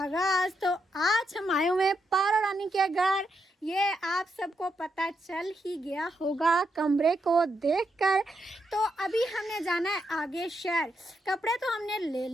तो आज हम आए हुए पारो रानी के घर। ये आप सबको पता चल ही गया होगा कमरे को देखकर। तो अभी हमने जाना है आगे शहर। कपड़े तो हमने ले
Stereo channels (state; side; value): normal; both; correlation 0.81